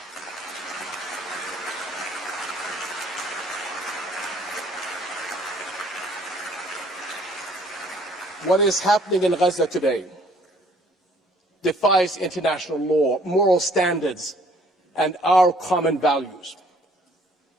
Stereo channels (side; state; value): both; normal; correlation 0.60